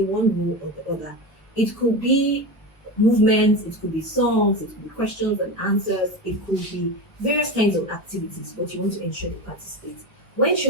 one role or the other. It could be movements, it could be songs, it could be questions and answers, it could be various kinds of activities, but you want to ensure they participate. When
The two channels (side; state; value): both; normal; correlation 0.23